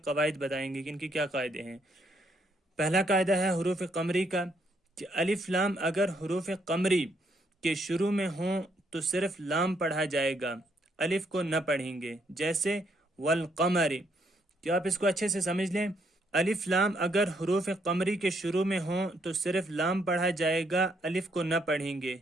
قواعد بتائیں گے کہ ان کی کیا قاعدے ہیں۔ پہلا قاعدہ ہے حروف قمری کا کہ الف لام اگر حروف قمری کے شروع میں ہوں تو صرف لام پڑھا جائے گا، الف کو نہ پڑھیں گے، جیسے والقمر۔ کیا آپ اس کو اچھے سے سمجھ لیں؟ الف لام اگر حروف قمری کے شروع میں ہوں تو صرف لام پڑھا جائے گا، الف کو نہ پڑھیں گے،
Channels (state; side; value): normal; both; correlation 0.73